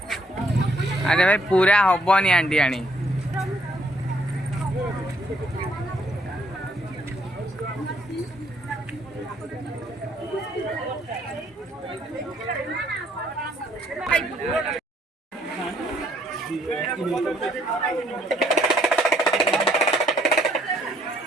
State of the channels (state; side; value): normal; both; correlation 0.68